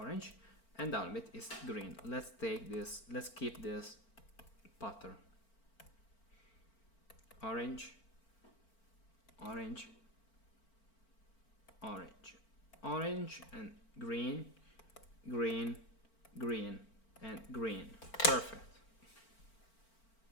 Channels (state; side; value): late; right; 4.4 ms